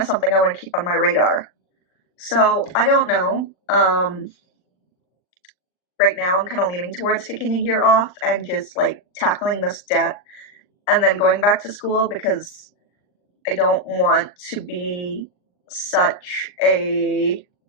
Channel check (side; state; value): right; late; 39 ms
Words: something I want to keep on my radar. So I don't know. Right now I'm kind of leaning towards taking a year off and just like tackling this debt and then going back to school, because I don't want to be such a